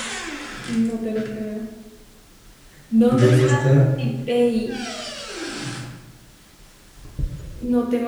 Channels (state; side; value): identical; both; correlation 1.00